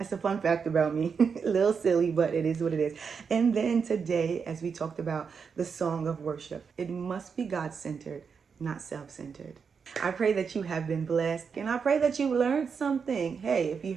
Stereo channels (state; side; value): quieter; left; 6.0 dB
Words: a fun fact about me. A little silly, but it is what it is. And then today, as we talked about the song of worship, it must be God-centered, not self-centered. I pray that you have been blessed, and I pray that you learned something. Hey, if you